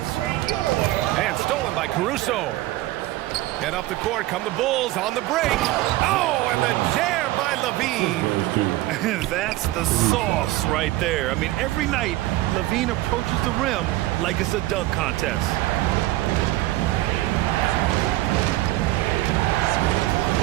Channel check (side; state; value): left; quieter; 17.3 dB